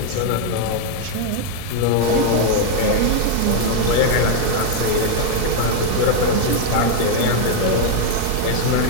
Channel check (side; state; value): both; different; correlation 0.01